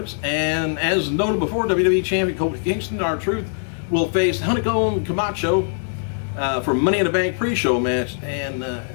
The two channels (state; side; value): silent; right; digital silence